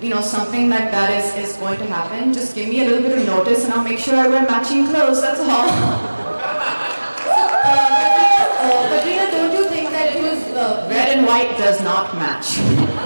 something like that is going to happen, just give me a little bit of notice and I'll make sure I wear matching clothes. That's all. Katrina, don't you think that it was... Red and white does not match.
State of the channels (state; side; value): inverted; both; correlation -1.00